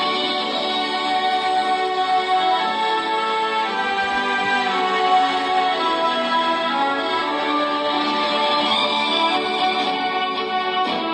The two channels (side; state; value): both; identical; correlation 1.00